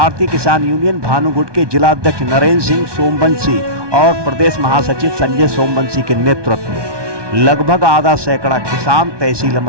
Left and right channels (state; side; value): late; left; 1.2 ms